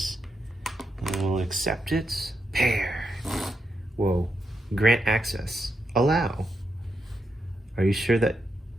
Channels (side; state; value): both; normal; correlation 0.84